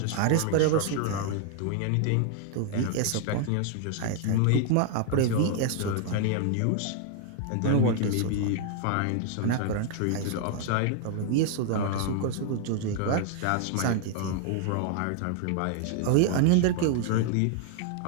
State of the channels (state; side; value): different; both; correlation 0.00